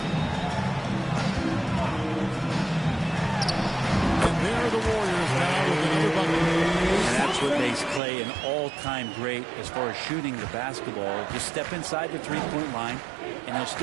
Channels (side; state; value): left; drops out; at 8.0 s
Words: And there are the Warriors now with another bucket. And that's what makes Clay an all-time great as far as shooting the basketball. Just step inside the three-point line, and he'll